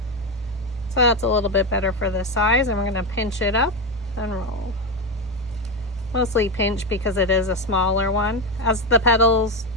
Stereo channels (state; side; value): normal; both; correlation 0.13